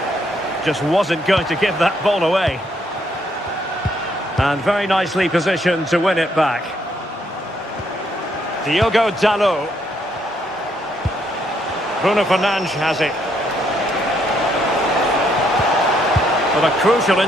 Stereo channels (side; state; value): both; normal; correlation 0.72